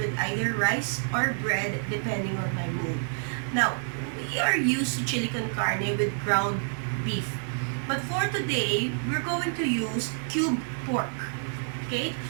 either rice or bread depending on my mood. Now, we are used to chili con carne with ground beef. But for today, we're going to use cubed pork. Okay?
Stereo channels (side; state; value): left; silent; digital silence